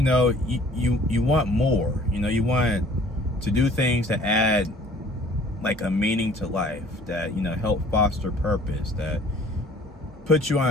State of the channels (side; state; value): both; normal; correlation 0.52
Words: want more. You want to do things that add like a meaning to life, that, help foster purpose, that put you